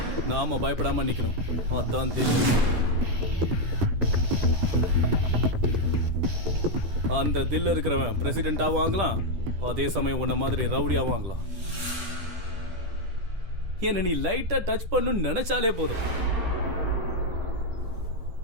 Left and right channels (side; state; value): left; late; 10 ms